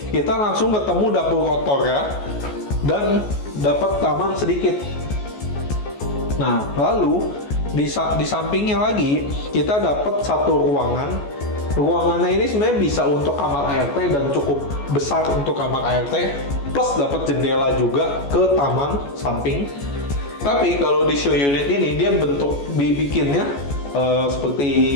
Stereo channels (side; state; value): right; late; 14 ms